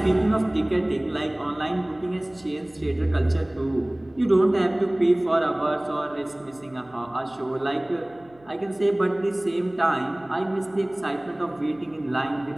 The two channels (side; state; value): right; noise; hum, 29 dB below the sound